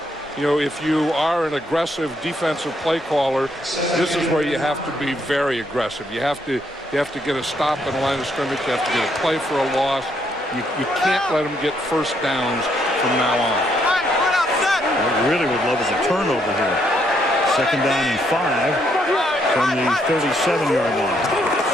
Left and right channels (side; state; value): both; normal; correlation 0.73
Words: you know, if you are an aggressive defensive play caller, this is where you have to be very aggressive. You have to get a stop in the line of scrimmage. You have to get a play for a loss. You can't let them get first downs from now on. What we really would love is a turnover here. 2nd down and 5 from the 37-yard line.